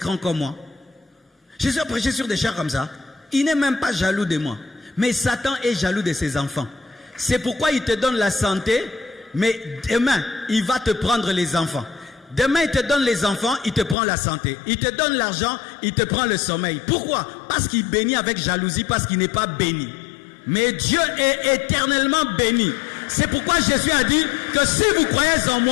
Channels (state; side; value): drops out; right; at 14.0 s